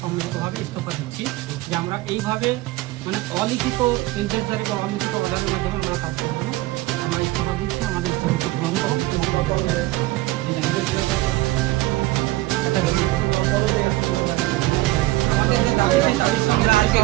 সম্মিলিতভাবে ইস্তফা দিচ্ছি যে আমরা এইভাবে মানে অলিখিত ইন্টেন্সারি বা অলিখিত অর্ডারের মাধ্যমে আমরা কাজ করবো না। আমরা ইস্তফা দিচ্ছি, আমাদের ইস্তফাকে গ্রহণ করুন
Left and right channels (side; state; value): left; quieter; 18.7 dB